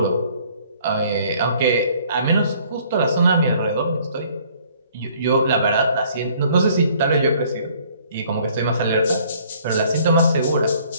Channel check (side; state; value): both; inverted; correlation -0.59